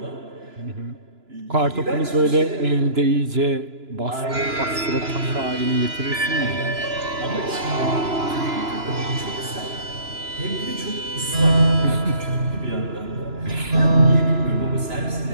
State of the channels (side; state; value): left; late; 2.9 ms